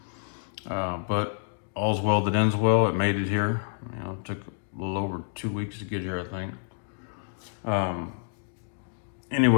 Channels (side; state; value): right; silent; 59 dB below the other